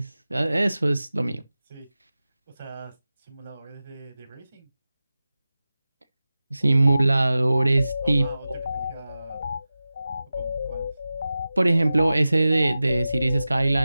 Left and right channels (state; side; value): inverted; both; correlation -0.95